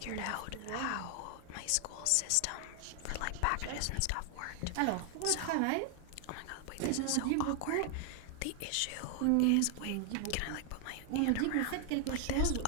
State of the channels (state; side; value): different; both; correlation 0.00